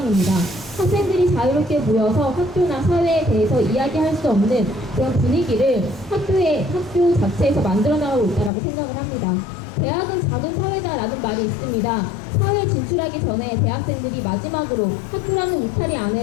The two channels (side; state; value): right; drops out; at 8.5 s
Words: 학생들이 자유롭게 모여서 학교나 사회에 대해서 이야기할 수 없는 그런 분위기를 학교 자체에서 만들어 나가고 있다고 생각을 합니다. 대학은 작은 사회다라는 말이 있습니다. 사회에 진출하기 전에 대학생들이 마지막으로 학교라는 울타리